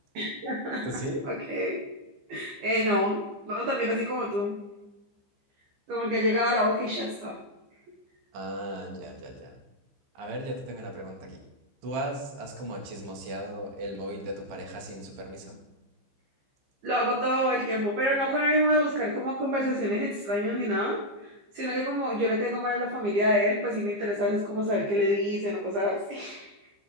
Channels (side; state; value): left; late; 15 ms